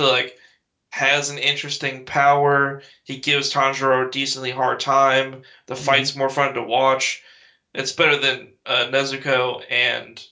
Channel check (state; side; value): identical; both; correlation 1.00